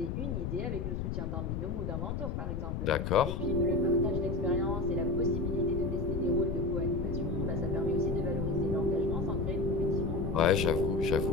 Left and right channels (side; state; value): left; noise; rumble, 2 dB below the sound